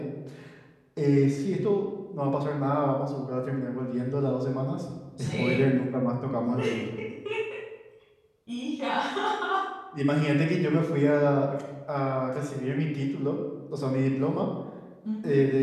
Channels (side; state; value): both; identical; correlation 1.00